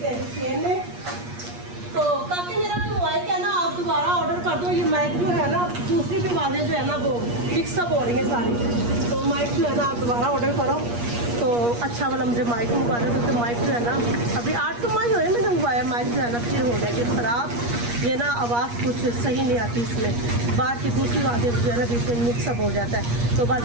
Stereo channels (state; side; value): late; left; 8.4 ms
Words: हैं चेन में तो काफ़ी मेरा मोबाइल क्या ना आप दोबारा ऑर्डर कर दो। ये माइक जो है ना दूसरी भी वाले जो है ना वो मिक्सअप हो रही है सारी, तो माइक जो है ना आप दोबारा ऑर्डर करो तो अच्छा वाला मुझे माइक मंगवा दो, क्योंकि माइक जो है ना अभी 8 तो माह हुए मैंने मंगवाया, माइक जो है ना फिर हो गया कि ख़राब, ये ना आवाज़ कुछ सही नहीं आती इसमें, बाहर की दूसरी आवाज़ें जो है ना बीच में मिक्सअप हो जाता है। तो